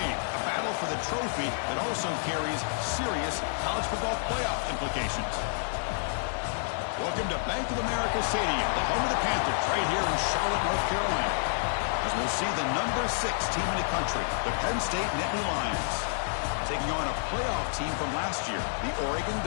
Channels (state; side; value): silent; right; 58 dB below the other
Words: a battle for the trophy that also carries serious college football playoff implications. Welcome to Bank of America Stadium, the home of the Panthers, right here in Charlotte, North Carolina, as we'll see the number 6 team in the country, the Penn State Nittany Lions, taking on a playoff team from last year, the Oregon